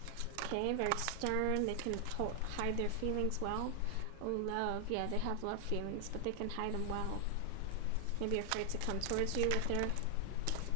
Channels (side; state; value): both; different; correlation 0.00